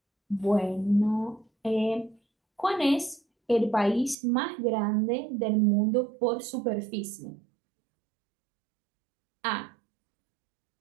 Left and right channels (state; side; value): drops out; left; at 4.2 s